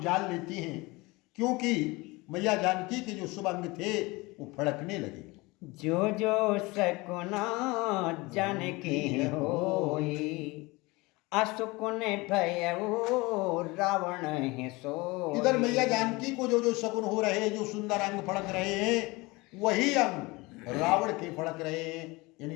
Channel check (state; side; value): quieter; right; 23.5 dB